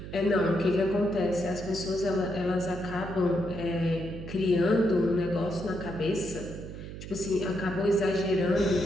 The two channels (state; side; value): noise; right; hum, 10 dB below the sound